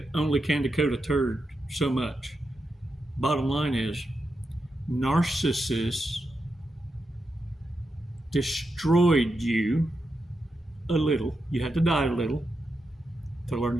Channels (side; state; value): both; normal; correlation 0.87